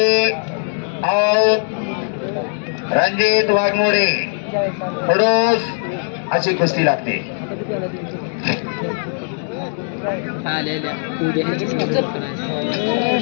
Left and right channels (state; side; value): silent; right; digital silence